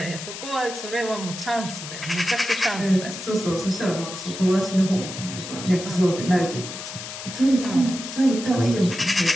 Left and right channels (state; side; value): noise; left; hiss, 10 dB below the sound